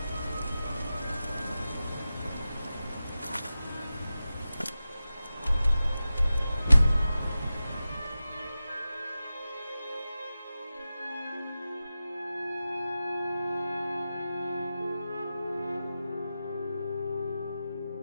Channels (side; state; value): both; inverted; correlation -0.93